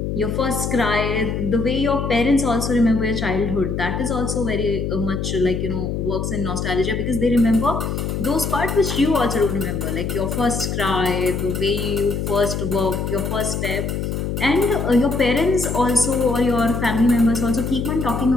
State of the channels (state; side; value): noise; left; hum, 2 dB below the sound